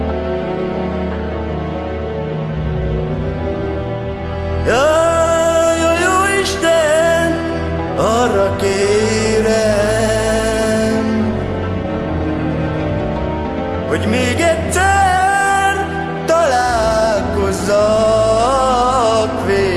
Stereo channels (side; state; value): both; identical; correlation 1.00